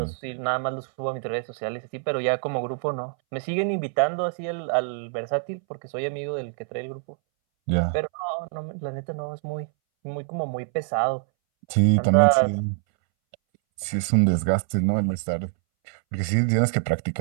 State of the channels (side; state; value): left; silent; 61 dB below the other